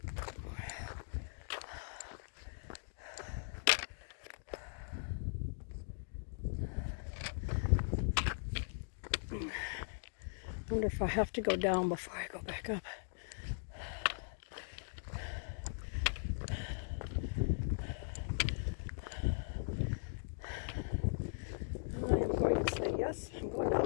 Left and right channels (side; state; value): right; silent; digital silence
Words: I wonder if I have to go down before I go back up. I am going to say yes, I'm going